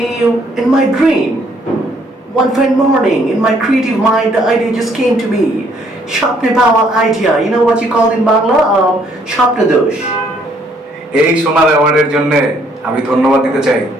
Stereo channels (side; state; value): both; normal; correlation 0.66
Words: in my dream. One fine morning, in my creative mind, the idea just came to me. Shapne Bawa idea. You know what you call in Bangla? Shapne dosh. এই সোনার অ্যাওয়ার্ডের জন্য আমি ধন্যবাদ দিতে চাই